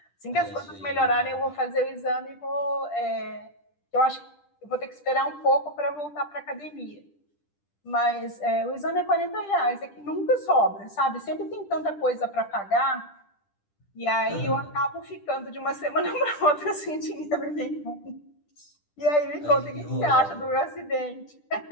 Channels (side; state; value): right; late; 10 ms